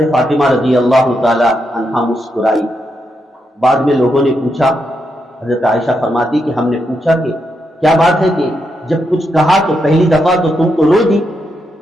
فاطمہ رضی اللہ تعالیٰ عنہا مسکرائی۔ بعد میں لوگوں نے پوچھا، حضرت عائشہ فرماتی کہ ہم نے پوچھا کہ کیا بات ہے کہ جب کچھ کہا تو پہلی دفعہ تو تم کو رو دی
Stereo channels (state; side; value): normal; both; correlation 0.82